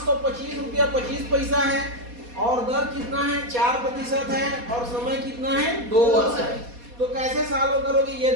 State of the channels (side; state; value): left; late; 4.2 ms